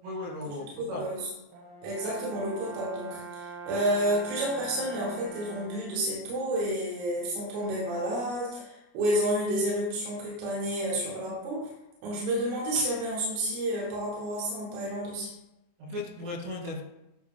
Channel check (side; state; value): left; late; 29 ms